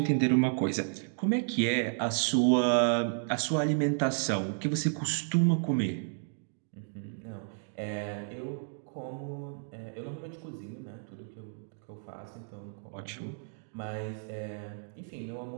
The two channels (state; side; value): silent; left; digital silence